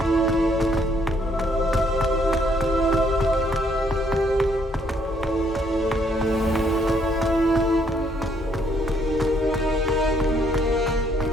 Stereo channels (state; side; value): normal; both; correlation 0.69